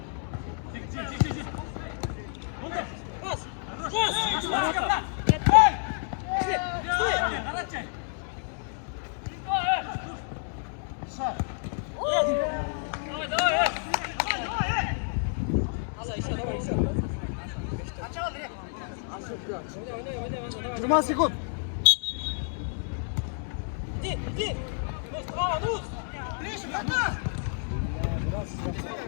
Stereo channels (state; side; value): silent; right; 58 dB below the other